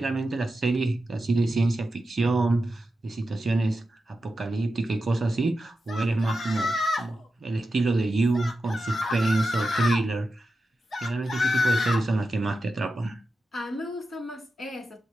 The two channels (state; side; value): normal; both; correlation 0.91